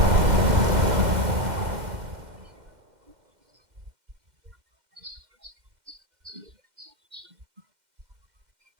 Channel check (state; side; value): late; left; 2.1 ms